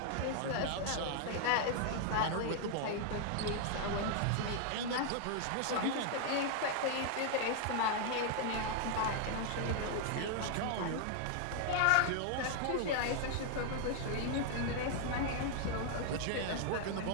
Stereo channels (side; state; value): both; different; correlation 0.00